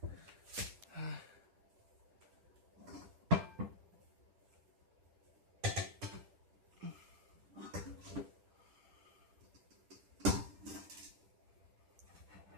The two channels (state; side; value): late; left; 10 ms